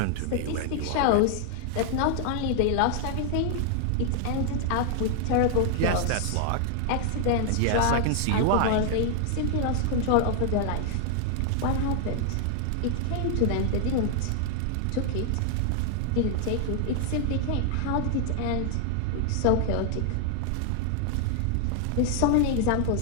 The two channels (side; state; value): both; different; correlation 0.00